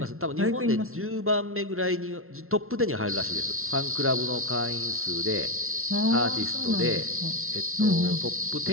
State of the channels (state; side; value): late; left; 0.62 ms